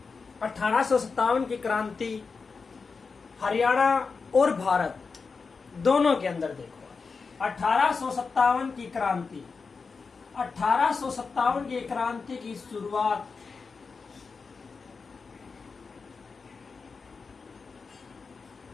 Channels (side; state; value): right; quieter; 4.8 dB